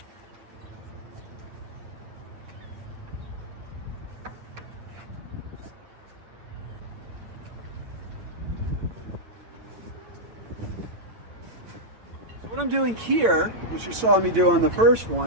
What I'm doing here, which you saw me do on the first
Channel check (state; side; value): late; left; 8.9 ms